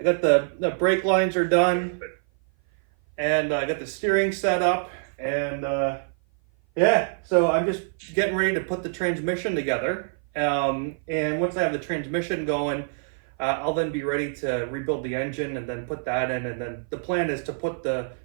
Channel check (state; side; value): silent; left; 56 dB below the other